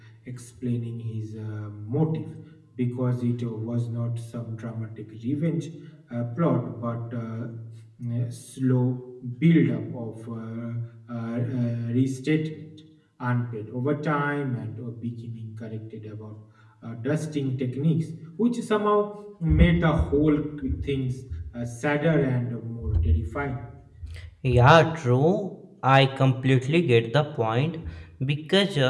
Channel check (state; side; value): identical; both; correlation 1.00